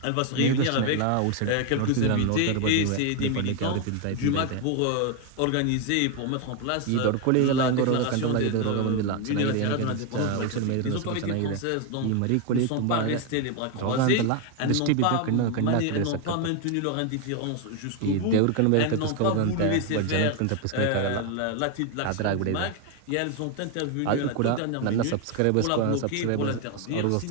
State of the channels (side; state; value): both; different; correlation 0.01